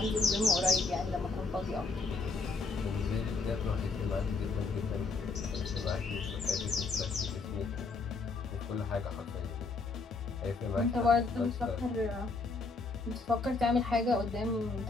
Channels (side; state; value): right; quieter; 3.9 dB